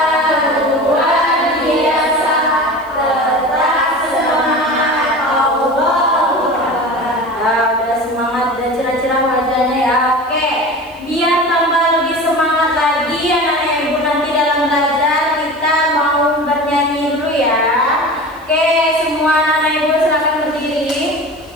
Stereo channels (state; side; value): noise; left; hiss, 30 dB below the sound